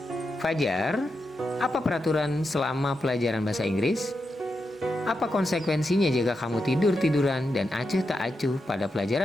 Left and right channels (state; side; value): normal; both; correlation 0.87